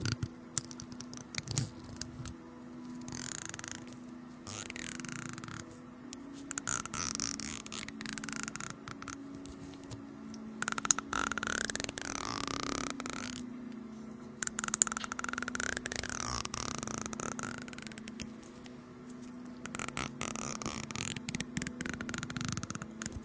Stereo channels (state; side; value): identical; both; correlation 1.00